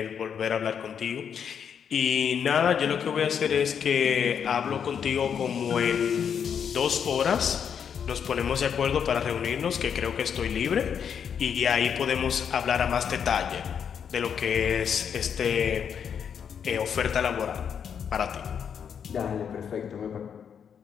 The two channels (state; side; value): quieter; right; 7.6 dB